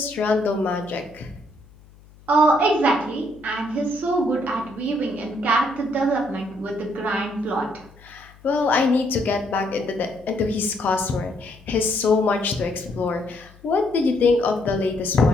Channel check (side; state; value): left; noise; hum, 25 dB below the sound